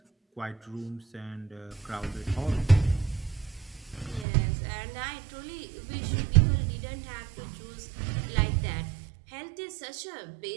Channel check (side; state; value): left; drops out; at 4.2 s